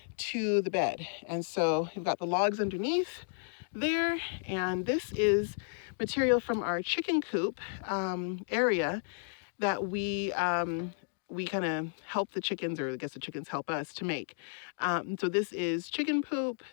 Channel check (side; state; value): right; silent; digital silence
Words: to the bed. And so we've got the logs underneath there, and this is material from our chicken coop area that we kind of help the chickens, or I guess the chickens help us to make. So this is chicken poop,